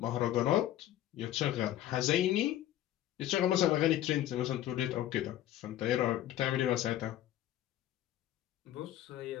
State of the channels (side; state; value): right; quieter; 13.0 dB